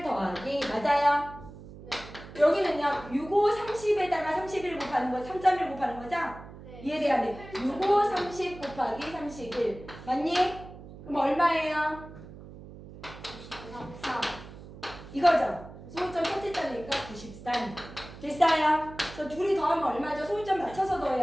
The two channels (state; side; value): noise; right; hum, 16 dB below the sound